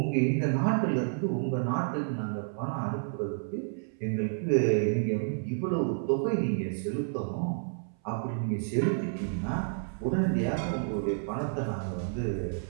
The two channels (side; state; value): left; silent; 58 dB below the other